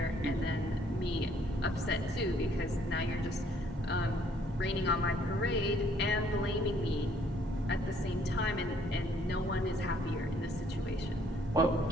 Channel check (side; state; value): both; normal; correlation 0.63